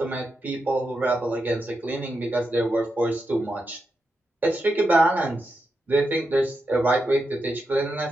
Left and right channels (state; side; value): normal; both; correlation 0.87